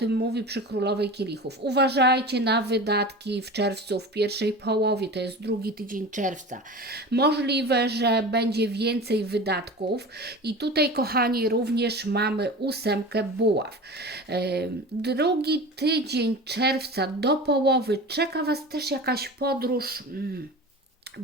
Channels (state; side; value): normal; both; correlation 0.33